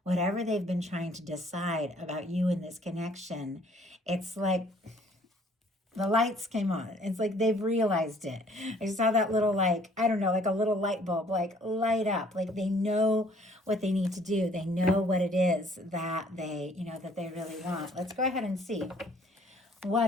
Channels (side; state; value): both; normal; correlation 0.59